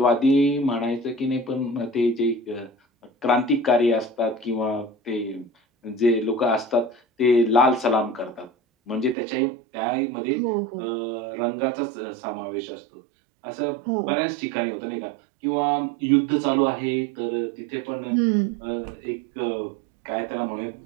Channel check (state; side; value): drops out; left; at 9.2 s